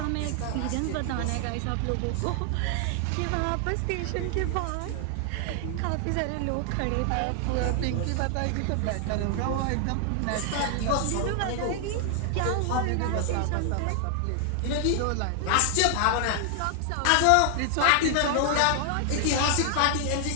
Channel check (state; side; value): different; both; correlation 0.00